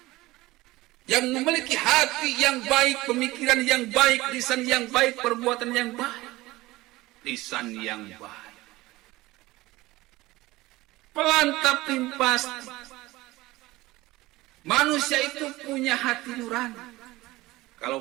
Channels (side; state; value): left; quieter; 19.1 dB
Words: yang memiliki hati yang baik, pemikiran yang baik, lisan yang baik, perbuatan yang baik. Lisan yang baik. Pelan tapi pasti. Manusia itu punya hati nurani.